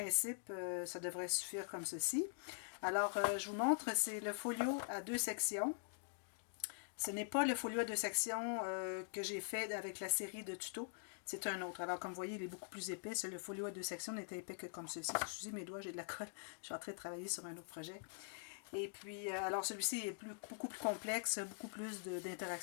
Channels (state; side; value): silent; right; digital silence